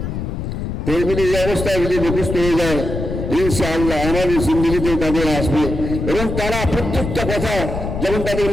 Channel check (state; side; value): noise; left; rumble, 4 dB below the sound